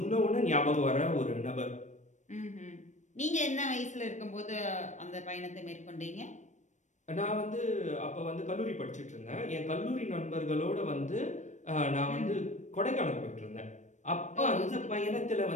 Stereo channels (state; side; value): late; right; 0.35 ms